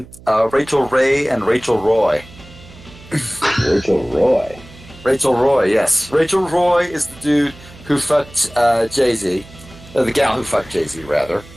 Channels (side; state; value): right; noise; hum, 21 dB below the sound